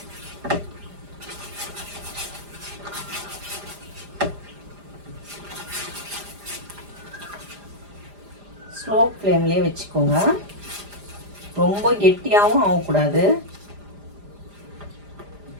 ஸ்லோ ஃப்ளேம்லேயே வச்சுக்கோங்க. ரொம்ப கெட்டியாகவும் ஆகக்கூடாது.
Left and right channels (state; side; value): late; left; 5.0 ms